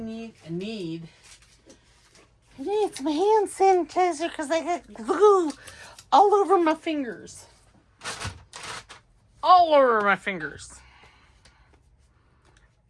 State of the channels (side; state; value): both; identical; correlation 1.00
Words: some hand sanitizer because I got glue all over my fingers. All over my fingers.